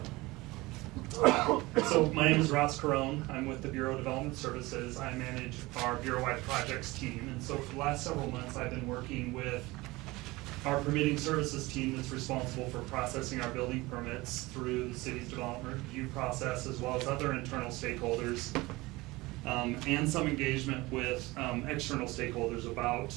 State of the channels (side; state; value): left; quieter; 21.3 dB